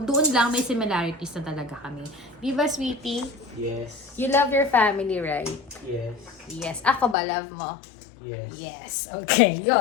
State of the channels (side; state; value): right; drops out; at 7.2 s